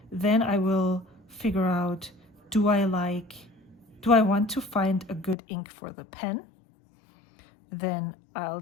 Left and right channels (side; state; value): right; drops out; at 5.4 s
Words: then I will figure out, do I want to find a good ink for the pen? Then I'll